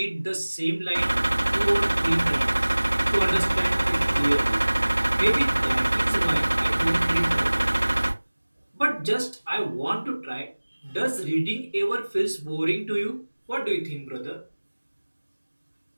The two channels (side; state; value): both; inverted; correlation -1.00